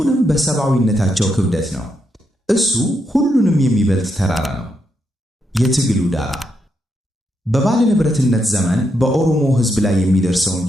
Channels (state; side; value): normal; both; correlation 0.81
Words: በሰብአዊነታቸው ክብደት ነው። እሱ ሁሉንም የሚበልጥ ተራራ ነው። የትግሉ ዳራ በባለ ንብረትነት ዘመን በኦሮሞ ሕዝብ ላይ የሚደርሰውን